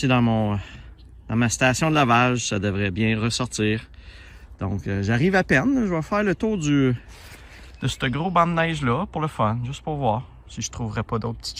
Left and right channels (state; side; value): identical; both; correlation 1.00